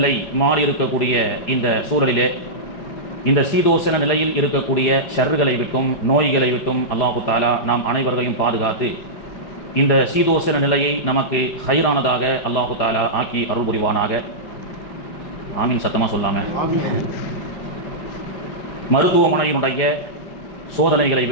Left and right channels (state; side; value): late; right; 4.9 ms